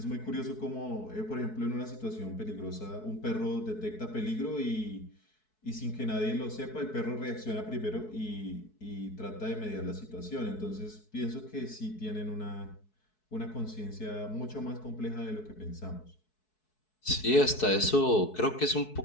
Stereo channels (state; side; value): late; right; 4.6 ms